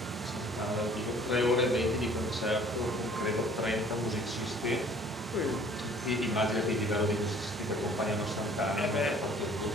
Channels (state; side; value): normal; both; correlation 0.54